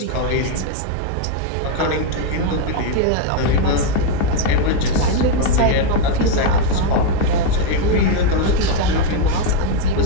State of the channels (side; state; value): both; different; correlation 0.02